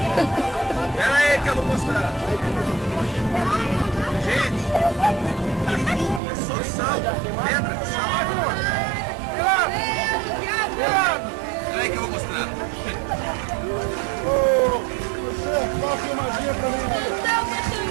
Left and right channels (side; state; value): left; drops out; at 6.2 s